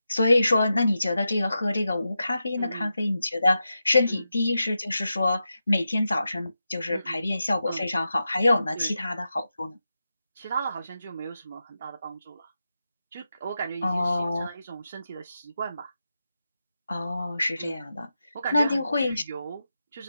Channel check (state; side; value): inverted; both; correlation -0.89